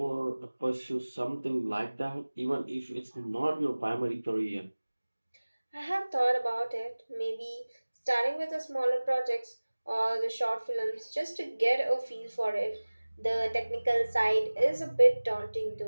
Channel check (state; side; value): inverted; both; correlation -1.00